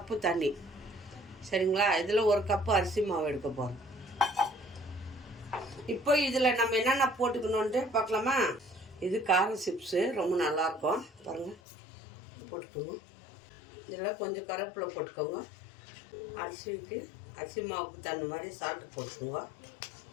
தண்ணி, சரிங்களா? இதில் ஒரு கப்பு அரிசி மாவு எடுக்க போகிறோம். இப்போ இதில் நம்ம என்னென்ன போட்டுக்கணுன்ட்டு பார்க்கலாமா? இது காரம் சிப்ஸு, ரொம்ப நல்லாயிருக்கும். பாருங்கள், போட்டுக்கோங்க. இதில் கொஞ்சம் கருவேப்பிலை போட்டுக்கோங்க. அரிசி மாவுக்கு தகுந்த மாதிரி சால்ட்டு போட்டுக்கோங்க.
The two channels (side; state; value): right; drops out; at 11.6 s